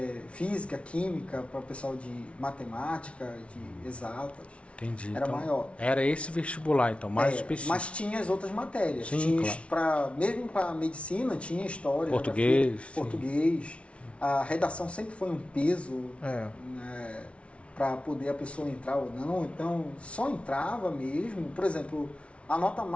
Física, Química, para o pessoal de Matemática, de Exatas. Entendi. Era então, maior. Era esse vestibular, então, mais específico. Mas tinha as outras matérias. Sim, tinha, claro. Mesmo para Medicina, tinha História, Português. Português. A redação sempre foi um peso, né, para poder a pessoa entrar ou não. Então, só entrava mesmo. Por exemplo, a nota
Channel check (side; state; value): right; late; 0.061 ms